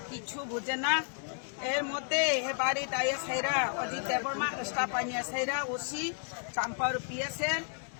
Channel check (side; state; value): right; silent; 56 dB below the other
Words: কিছু বুঝে না। এর মধ্যে বাড়ির আইএসআইরা অজিত দেববর্মা স্টাফ আইএসআইরা ওসি চাম্পার পিএসের